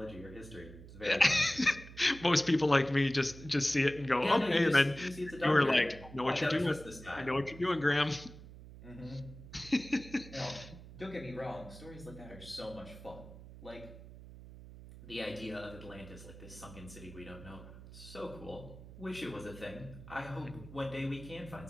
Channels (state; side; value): noise; right; hum, 16 dB below the sound